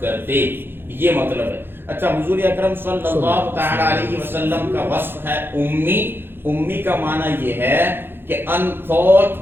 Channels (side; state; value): left; late; 0.10 ms